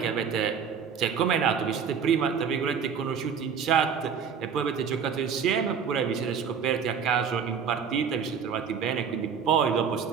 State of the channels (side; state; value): left; quieter; 6.8 dB